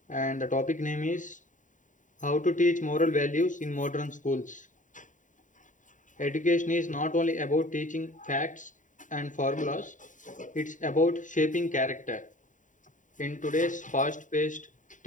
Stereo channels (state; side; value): late; right; 0.37 ms